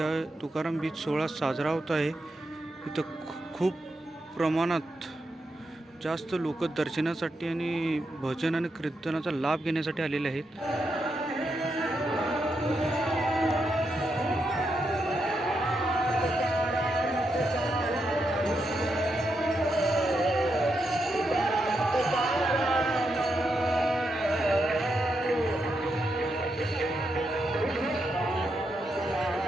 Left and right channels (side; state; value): both; normal; correlation 0.83